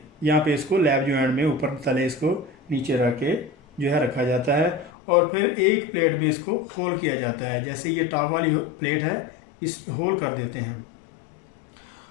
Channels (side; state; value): right; drops out; at 4.9 s